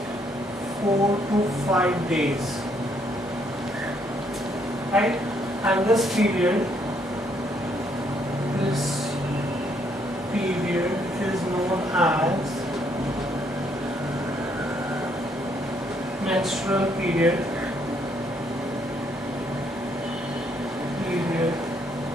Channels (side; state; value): both; normal; correlation 0.70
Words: 4 to 5 days. Right? And this period is known as menstrual period,